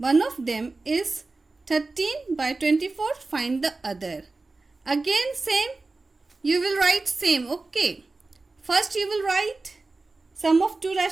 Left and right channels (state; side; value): quieter; left; 3.5 dB